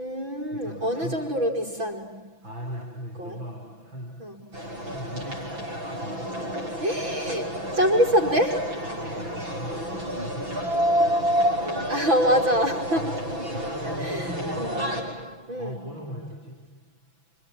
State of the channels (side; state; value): left; late; 6.0 ms